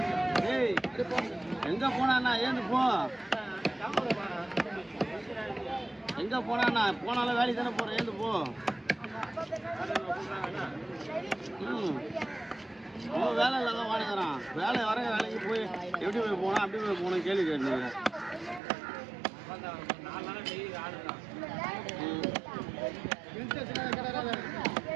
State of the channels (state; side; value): drops out; left; at 18.6 s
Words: ஏய் எங்கே போனாண்ணா ஏந்து போ. எங்கே போனாண்ணா போனாலும் வேலைக்கு தானே போகிறேன் ஏந்து போ. அவன் வேலை இல்லாத வாடகைறான். வேலை வர வேலைக்கு போய் எப்படி போய் போனா அப்படி போய் போகணும் கேள்வி கேட்டீங்க.